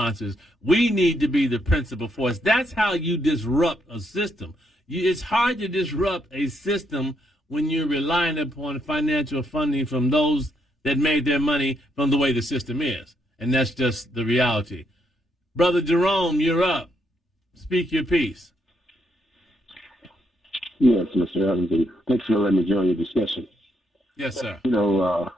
We need to be the principal force. That's how you disrupt a system. It's hard to disrupt a system when you're relying upon financial funding from those that made their money from the way the system is. And that's just the reality. Brother Jerome, you're up. Speak your piece. Yes, Mr. Evans. Thanks for letting me join your discussion. Yes, sir. We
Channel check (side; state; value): both; normal; correlation 0.76